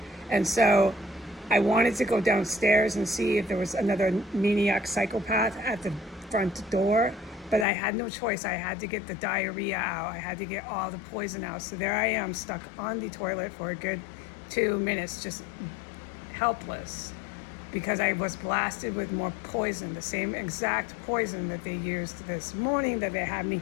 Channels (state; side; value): drops out; right; at 7.7 s